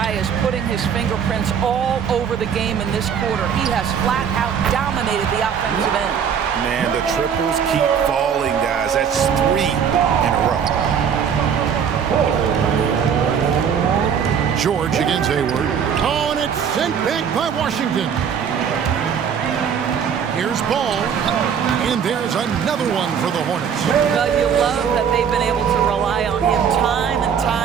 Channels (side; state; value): left; quieter; 7.6 dB